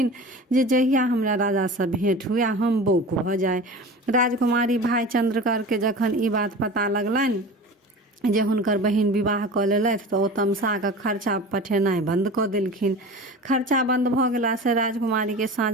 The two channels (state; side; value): normal; both; correlation 0.35